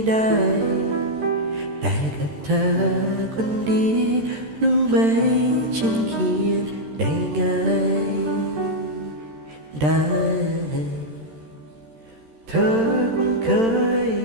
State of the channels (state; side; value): late; left; 13 ms